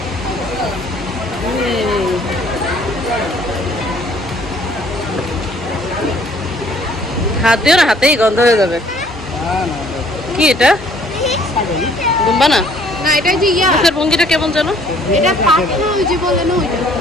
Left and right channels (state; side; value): normal; both; correlation 0.58